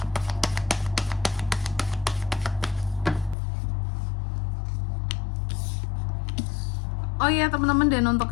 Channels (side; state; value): right; drops out; at 3.4 s